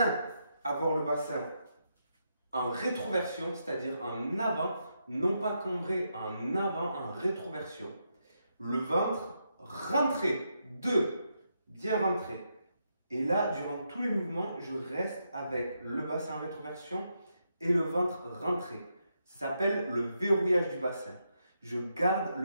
Avoir le bassin en rétroversion, c'est-à-dire en avant, non pas cambré, en avant, en rétroversion. Le ventre rentré, 2. Bien rentré. Et là, durant tous les mouvements, je reste avec le bassin en rétroversion et le ventre rentré. Ça s'appelle le verrouillage du bassin. Je garde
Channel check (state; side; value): inverted; both; correlation -0.82